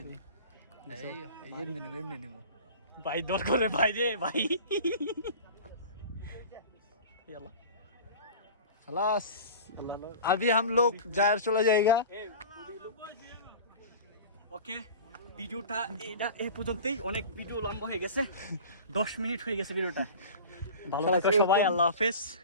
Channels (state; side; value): inverted; both; correlation -0.37